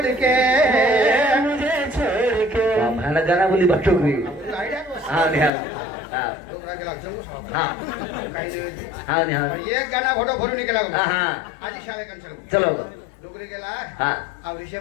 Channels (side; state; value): right; drops out; at 5.5 s